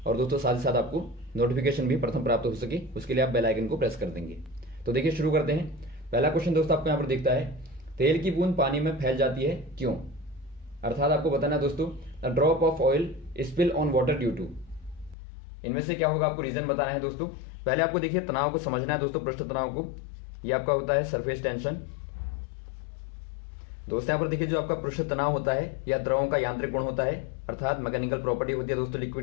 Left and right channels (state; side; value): drops out; right; at 15.2 s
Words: और दोस्तों साथ ही साथ आपको नोटिफिकेशन भी प्रथम प्राप्त हो सके उसके लिए आप बेल आइकन को प्रेस कर देंगे। तो देखिए शुरू करते हैं। पहला क्वेश्चन दोस्तों आपको यहाँ पर दिखता है, तेल की बूंद पानी में फैल जाती है क्यों? अर्थात आपको बताना है दोस्तों, a drop of oil spill on water due to. इनमें से क्या होगा आपको रीजन बताना है दोस्तों। पहले आपको देखिए तनाव को समझना है दोस्तों, पृष्ठ तनाव को। ये आपका होता है सरफेस टेंशन। दोस्तों यहाँ पर देखिए जो आपका पृष्ठ तनाव होता है या द्रवों का यांत्रिक गुण होता है, अर्थात मैकेनिकल प्रॉपर्टी होती है दोस्तों